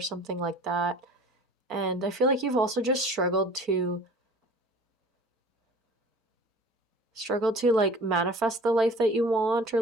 like that. And I feel like you've also just struggled to like manifest the life that you want, or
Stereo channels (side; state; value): both; normal; correlation 0.45